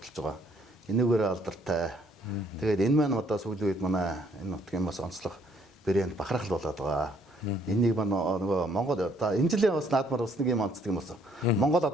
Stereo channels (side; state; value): both; normal; correlation 0.65